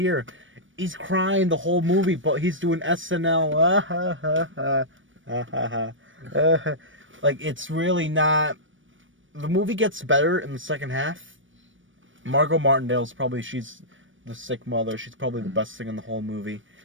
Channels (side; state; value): left; late; 0.56 ms